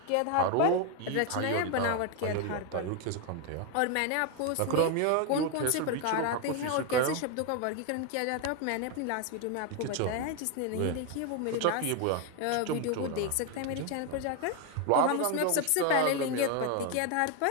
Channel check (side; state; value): both; different; correlation 0.01